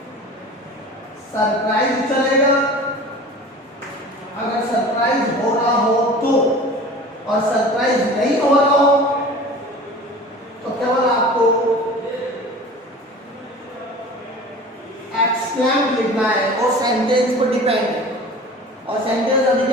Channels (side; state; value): both; normal; correlation 0.40